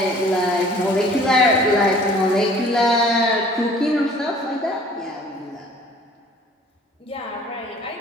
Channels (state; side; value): normal; both; correlation 0.52